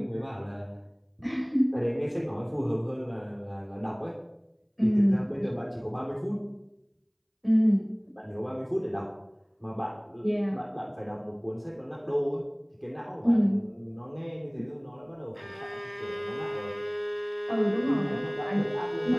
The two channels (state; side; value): identical; both; correlation 1.00